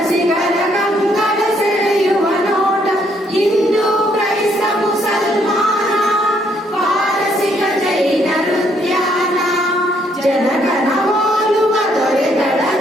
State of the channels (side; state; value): both; normal; correlation 0.70